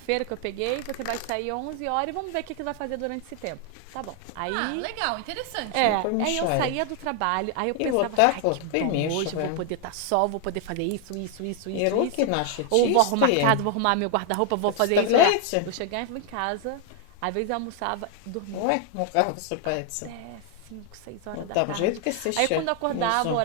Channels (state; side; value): different; both; correlation 0.00